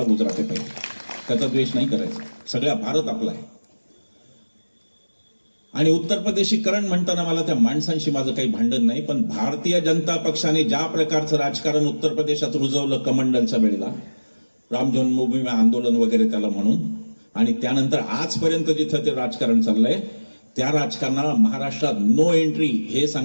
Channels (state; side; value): inverted; both; correlation -1.00